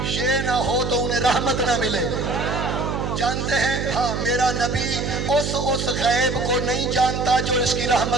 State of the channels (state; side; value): noise; right; hum, 2 dB below the sound